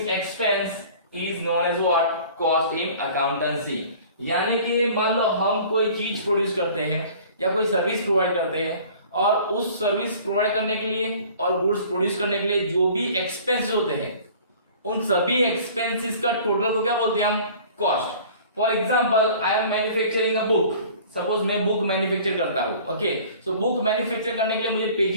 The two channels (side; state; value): both; inverted; correlation -0.47